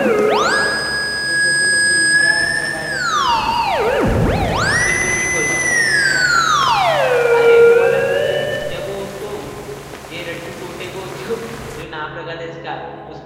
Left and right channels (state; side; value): identical; both; correlation 1.00